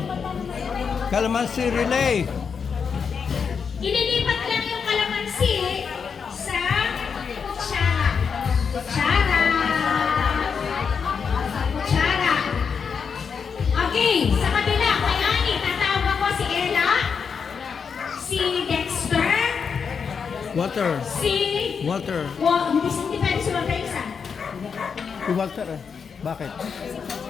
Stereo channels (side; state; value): right; quieter; 6.2 dB